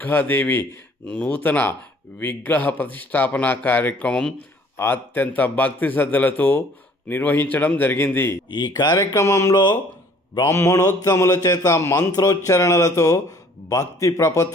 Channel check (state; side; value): normal; both; correlation 0.56